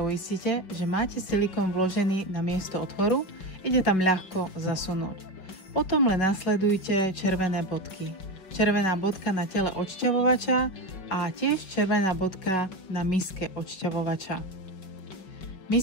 že máte silikón vložený na miesto otvoru, ide tam ľahko zasunúť. Potom len nasledujte červené bodky. Červená bodka na tele odšťavovača a tiež červená bodka na miske odšťavovača.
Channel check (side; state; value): right; late; 5.4 ms